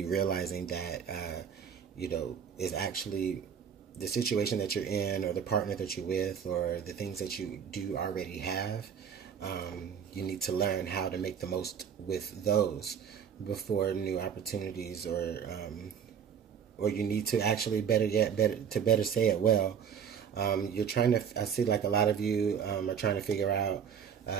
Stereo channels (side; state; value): left; quieter; 7.7 dB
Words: realizing that, is actually the situation that you're in, or the partner that you're with, or the things that you do already have. You need to learn how to make the most with those before new opportunities, or you need to actually better say it well. I see like a lot of you are trying to figure out